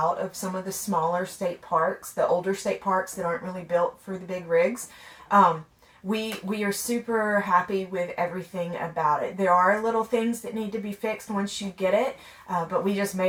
of some of the smaller state parks, the older state parks that aren't really built for the big rigs. we are super happy with everything about it. There are little things that need to be fixed once you get it, but we just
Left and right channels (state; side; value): identical; both; correlation 1.00